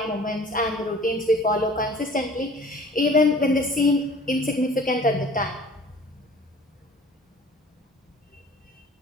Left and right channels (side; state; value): both; normal; correlation 0.48